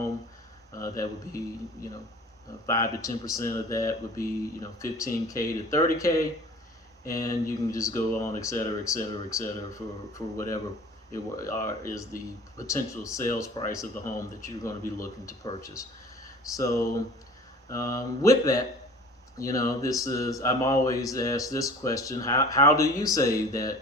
that would be, you know, 5 to 10% of that would be, you know, 15K to 30K, and you can just go on, et cetera, for whatever is the potential sales price of the home that you're going to be looking to purchase. So with that, I'm always asked this question: how do you save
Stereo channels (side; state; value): both; normal; correlation 0.44